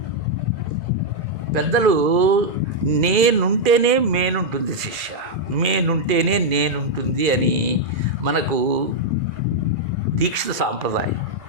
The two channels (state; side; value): late; left; 2.0 ms